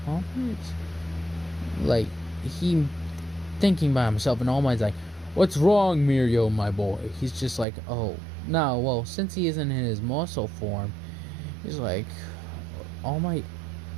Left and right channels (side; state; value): left; drops out; at 7.7 s